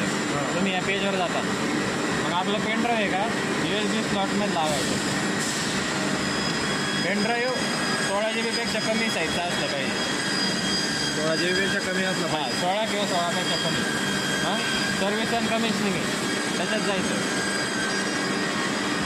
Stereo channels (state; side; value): identical; both; correlation 1.00